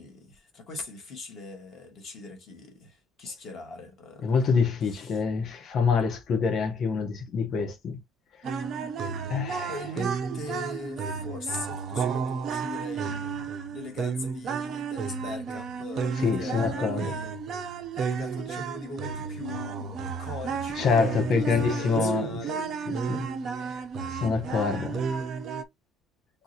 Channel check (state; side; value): normal; both; correlation 0.62